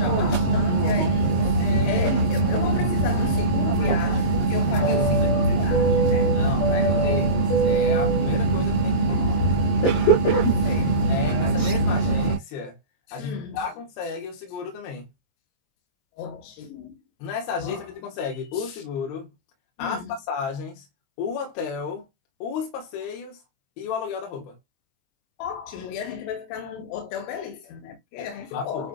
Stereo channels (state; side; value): late; right; 22 ms